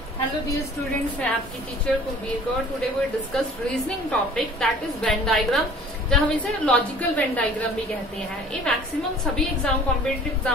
Hello dear students, मैं आपकी teacher Kulbir Kaur. Today we discuss reasoning topic that is Venn diagram, जहाँ हम इसे लॉजिकल वेन डायग्राम भी कहते हैं। ये मैक्सिमम सभी एग्जाम कॉम्पिटिटिव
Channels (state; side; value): normal; both; correlation 0.49